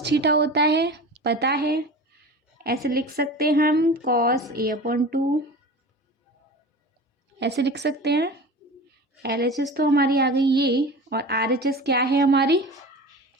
theta होता है, पता है। ऐसे लिख सकते हैं हम, कॉस A अपॉन 2 ऐसे लिख सकते हैं। LHS तो हमारी आ गई ये, और RHS क्या है हमारी?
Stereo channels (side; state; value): both; normal; correlation 0.34